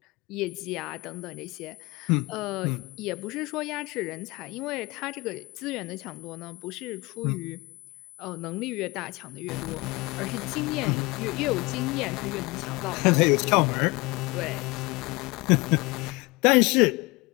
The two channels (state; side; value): quieter; right; 23.8 dB